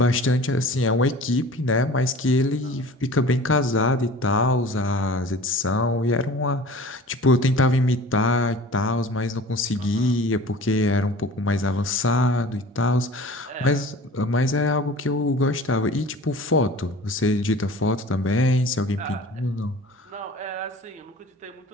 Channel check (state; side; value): normal; both; correlation 0.42